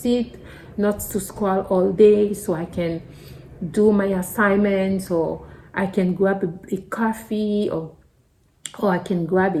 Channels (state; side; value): identical; both; correlation 1.00